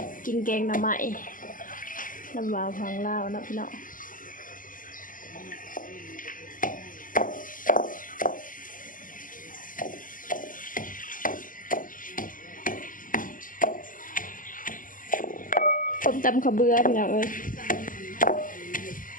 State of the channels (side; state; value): right; late; 0.39 ms